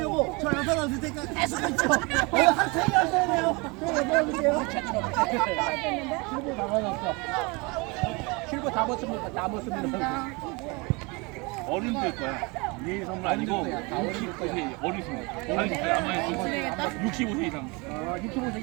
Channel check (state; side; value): quieter; left; 27.9 dB